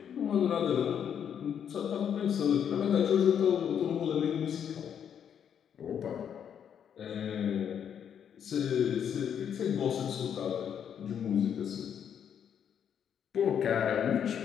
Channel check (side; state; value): right; quieter; 8.4 dB